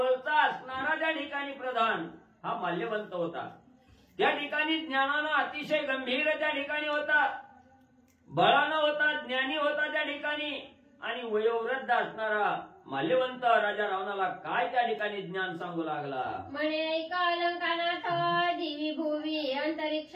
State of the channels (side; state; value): both; identical; correlation 1.00